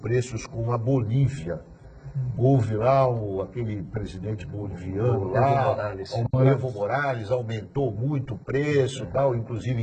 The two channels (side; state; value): both; identical; correlation 1.00